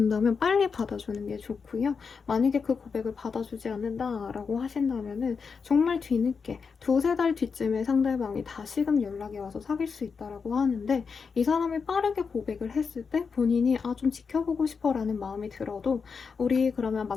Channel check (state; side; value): quieter; right; 5.5 dB